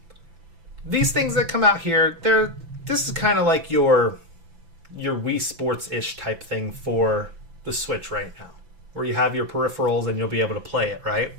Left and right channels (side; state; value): left; late; 6.0 ms